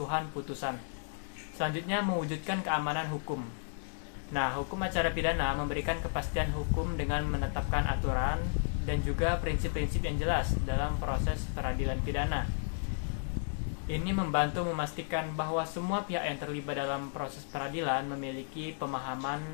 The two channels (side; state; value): right; silent; digital silence